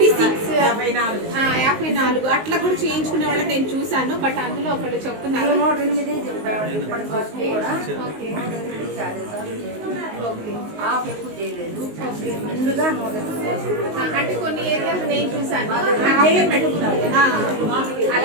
54 అట్లా కూడా చేయించుకునే వాళ్ళని నేను చూసాను. బట్ అందులో ఒకళ్ళు చెప్తున్నారు 108 చెప్పాడు. ఇప్పటి వరకు కూడా 108 ఆఫ్ ఎక్కువ చేయలేదు. ముందుగా 108 అంటే కొన్ని ఏరియాలు నేను చూసాను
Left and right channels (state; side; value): late; left; 19 ms